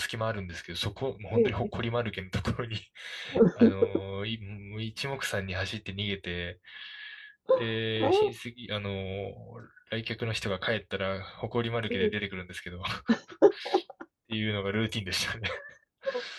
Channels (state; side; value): identical; both; correlation 1.00